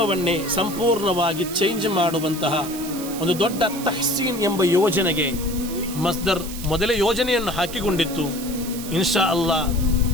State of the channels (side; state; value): right; noise; hiss, 11 dB below the sound